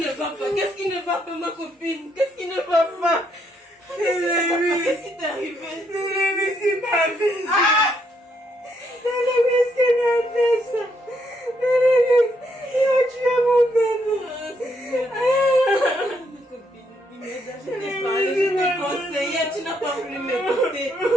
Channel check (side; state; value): both; normal; correlation 0.74